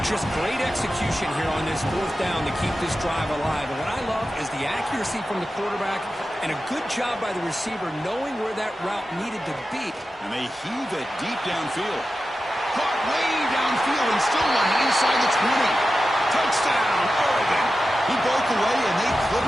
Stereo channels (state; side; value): normal; both; correlation 0.93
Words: Just great execution here on this 4th down to keep this drive alive. And what I love is the accuracy from the quarterback and a good job by the receiver knowing where that route needed to be. And they heave it deep downfield. Caught way downfield and still one inside the 20. Touchdown, Oregon. He broke away and they